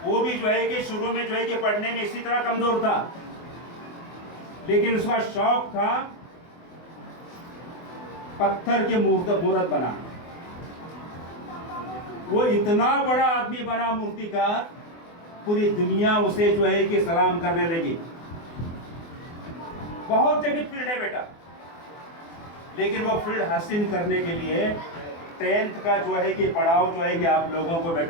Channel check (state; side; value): late; right; 24 ms